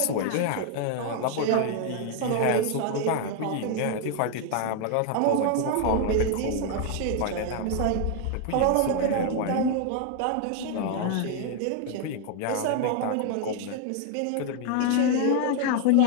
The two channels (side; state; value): both; different; correlation 0.00